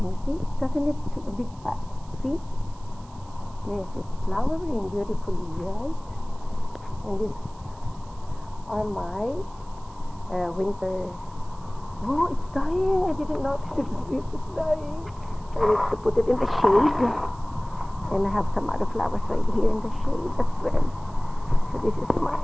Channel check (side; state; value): right; noise; hiss, 27 dB below the sound